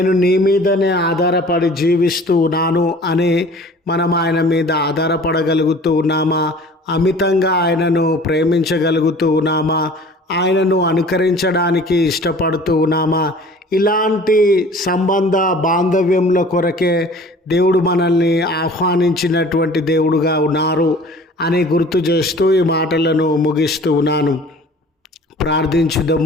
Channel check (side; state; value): both; normal; correlation 0.47